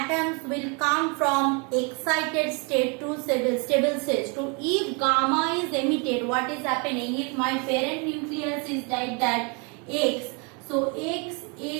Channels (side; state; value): left; quieter; 33.3 dB